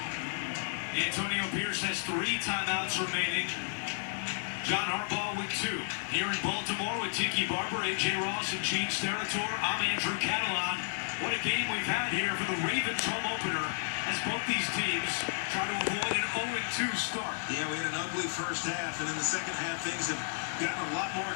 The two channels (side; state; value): right; silent; 56 dB below the other